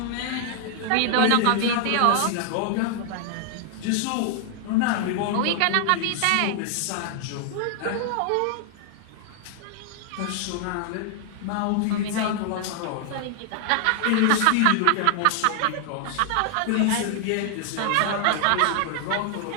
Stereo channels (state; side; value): different; both; correlation 0.00